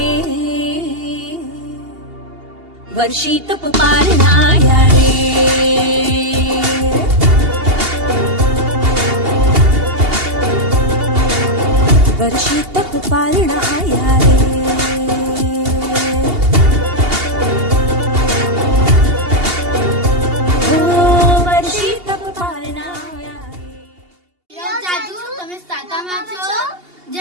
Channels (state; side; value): late; left; 2.8 ms